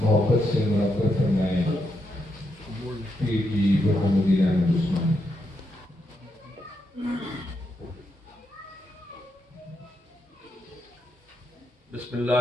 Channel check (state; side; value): normal; both; correlation 0.81